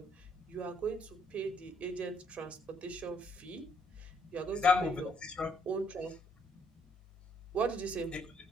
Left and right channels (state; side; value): normal; both; correlation 0.69